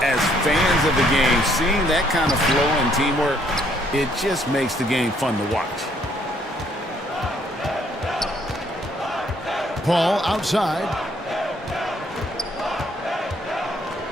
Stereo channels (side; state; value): both; normal; correlation 0.67